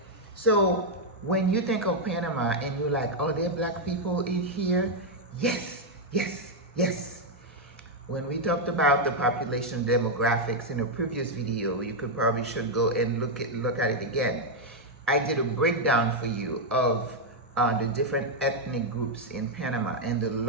So when you think of Panama and you're like, oh, there are black people in here? Yes, yes, yes. When we talked about the population demographics in a previous video, you could probably should go and look at it again. I did a breakdown for you of the different ethnic groups in Panama, and the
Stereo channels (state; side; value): normal; both; correlation 0.00